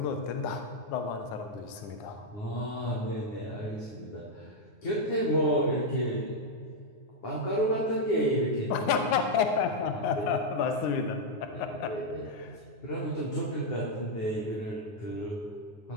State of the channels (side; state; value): right; late; 9.8 ms